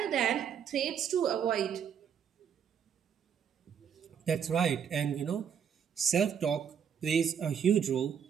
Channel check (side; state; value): left; quieter; 7.9 dB